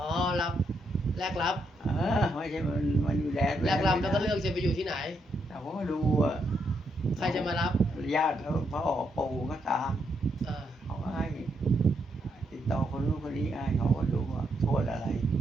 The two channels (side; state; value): both; normal; correlation 0.79